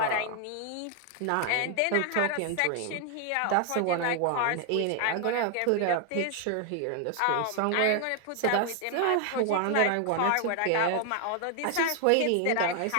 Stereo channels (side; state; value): both; different; correlation 0.00